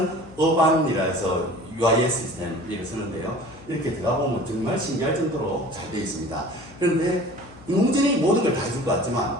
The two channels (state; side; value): noise; left; hum, 21 dB below the sound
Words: 어반이라 해서 UIS 시스템 이렇게 쓰는데요. 이렇게 들어가 보면 정말 신기할 정도로 잘 되어 있습니다. 그런데 인공지능이 모든 걸 다 해줄 것